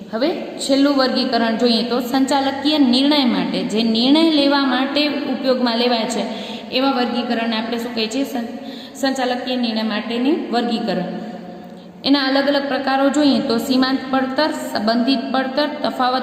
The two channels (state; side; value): identical; both; correlation 1.00